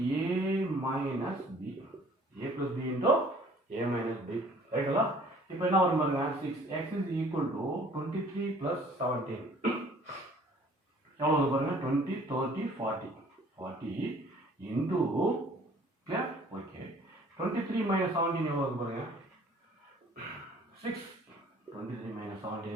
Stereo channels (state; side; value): normal; both; correlation 0.54